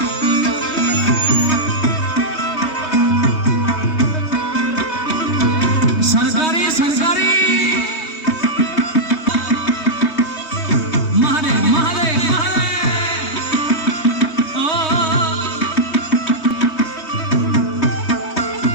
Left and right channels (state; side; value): late; right; 3.2 ms